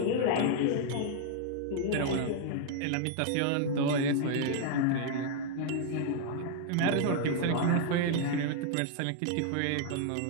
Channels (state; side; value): different; both; correlation 0.00